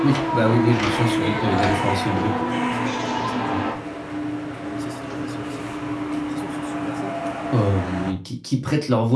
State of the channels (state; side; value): identical; both; correlation 1.00